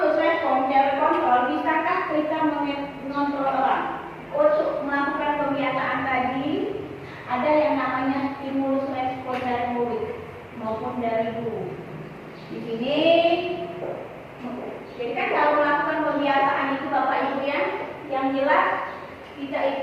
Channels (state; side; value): identical; both; correlation 1.00